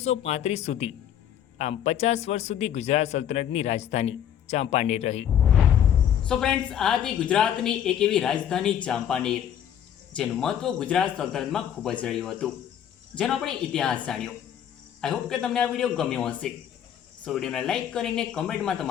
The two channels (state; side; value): quieter; right; 9.8 dB